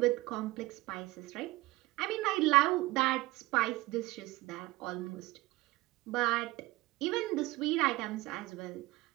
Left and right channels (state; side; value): quieter; left; 19.9 dB